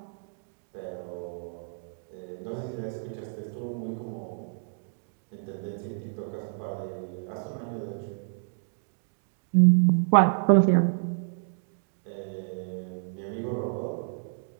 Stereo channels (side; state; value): left; silent; digital silence